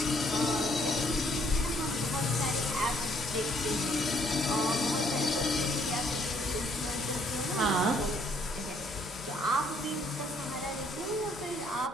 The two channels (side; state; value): both; normal; correlation 0.66